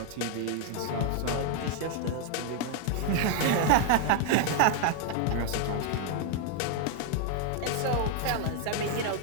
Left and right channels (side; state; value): both; different; correlation 0.00